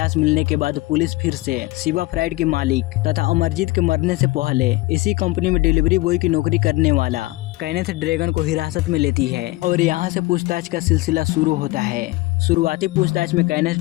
मिलने के बाद पुलिस फिर से शिवा फ्राइड के मालिक तथा अमरजीत के मरने से पहले इसी कंपनी में डिलीवरी बॉय की नौकरी करने वाला केनिथ रेगन को हिरासत में लेती है और यहाँ से पूछताछ का सिलसिला शुरू होता है। शुरुआती पूछताछ में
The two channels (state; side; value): quieter; right; 20.2 dB